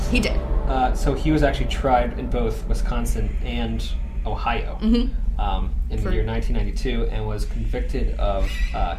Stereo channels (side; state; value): both; identical; correlation 1.00